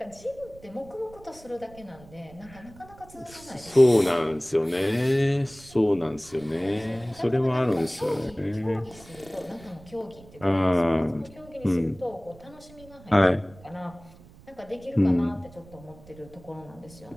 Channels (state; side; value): noise; right; rumble, 22 dB below the sound